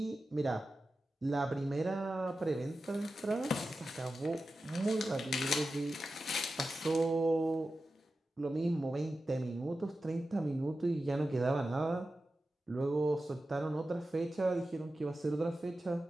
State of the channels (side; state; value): both; normal; correlation 0.93